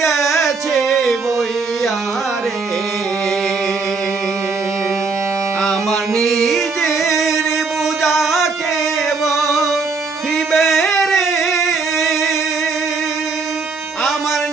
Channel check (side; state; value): left; quieter; 4.4 dB